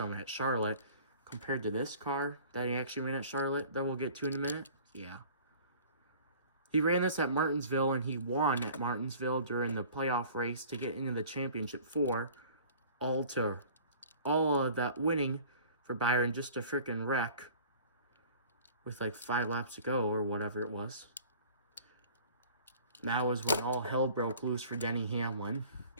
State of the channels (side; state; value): both; inverted; correlation -0.47